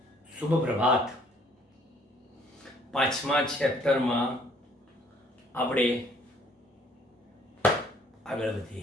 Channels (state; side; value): normal; both; correlation 0.61